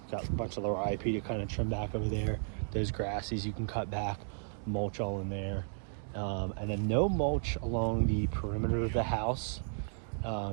Got a bunch of lower IP to kind of trim back over there. Those grasses you can cut back, mulch all in there. And then no mulch along the perimeter of the house.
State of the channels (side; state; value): left; silent; digital silence